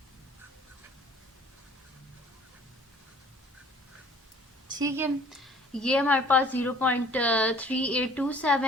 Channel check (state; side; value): normal; both; correlation 0.53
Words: ठीक है, ये हमारे पास